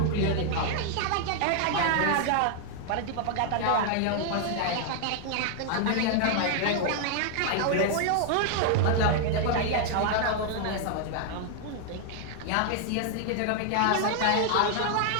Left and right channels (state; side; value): different; both; correlation 0.00